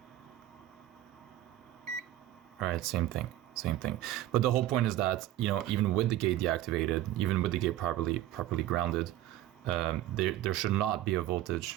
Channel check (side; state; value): left; quieter; 13.7 dB